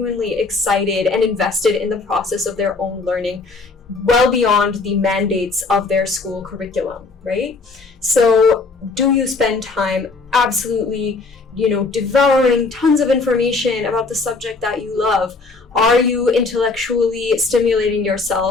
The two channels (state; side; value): quieter; right; 3.9 dB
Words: excited and invested in the process of their own learning, well beyond the mandates of their school curriculum, right? So do you spend time absolutely, devouring tons of information about the subject that you love? Are you intellectually stimulating